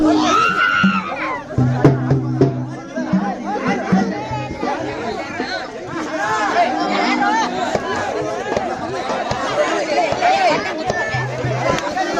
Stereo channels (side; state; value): both; identical; correlation 1.00